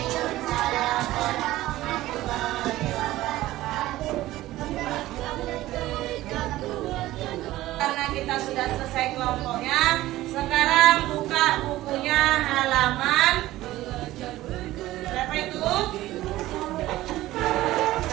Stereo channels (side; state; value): left; quieter; 16.2 dB